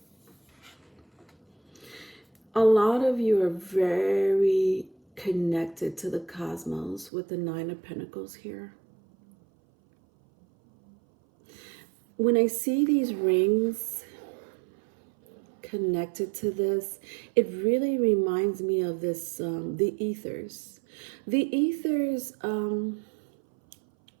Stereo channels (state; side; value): drops out; left; at 7.1 s